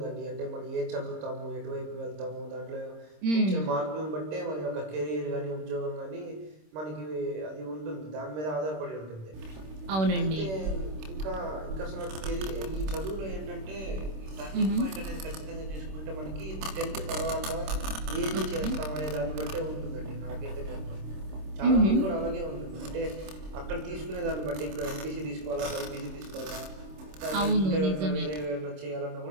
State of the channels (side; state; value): left; late; 26 ms